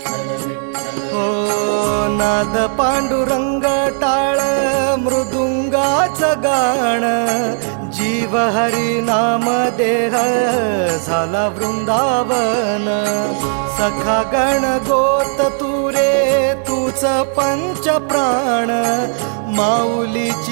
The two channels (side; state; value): left; silent; 69 dB below the other